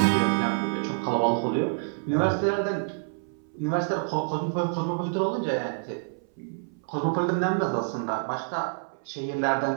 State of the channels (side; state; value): left; silent; 60 dB below the other